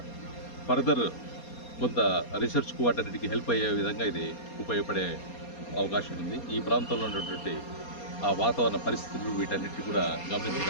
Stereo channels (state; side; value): late; right; 4.2 ms